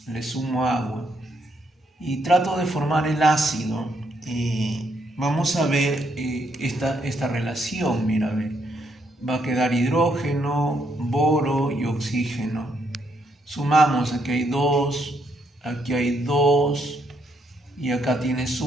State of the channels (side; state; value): both; normal; correlation 0.75